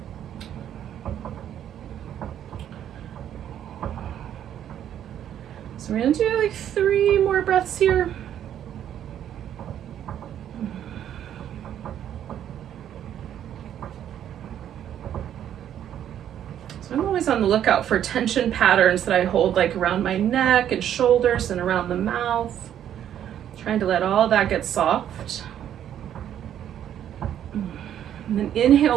So we're gonna do like 3 more breaths here. So I'm always on the lookout for tension patterns that I hold like around my neck and shoulders and around the mouth. Trying to let all that get soft. And then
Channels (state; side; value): quieter; left; 10.3 dB